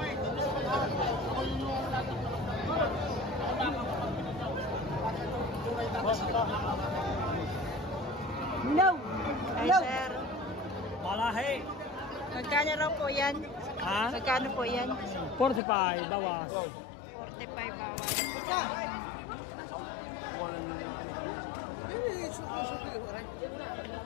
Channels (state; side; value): drops out; right; at 15.6 s